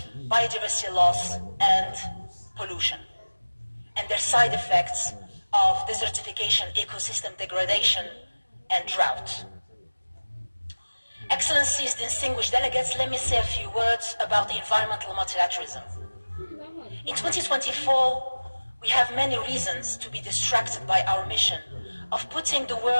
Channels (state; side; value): inverted; both; correlation -1.00